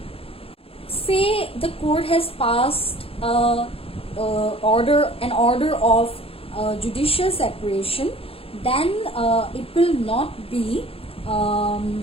Say the court has passed an order of judicial separation, then it will not be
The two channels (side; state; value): right; late; 0.27 ms